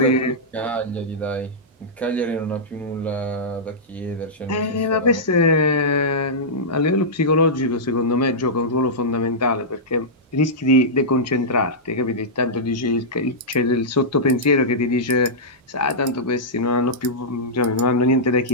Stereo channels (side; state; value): both; normal; correlation -0.12